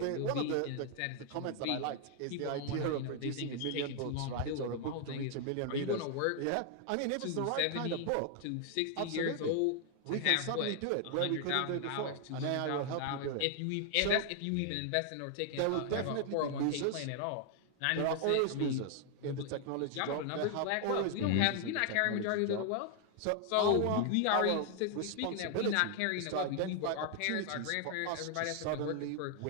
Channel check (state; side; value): different; both; correlation 0.00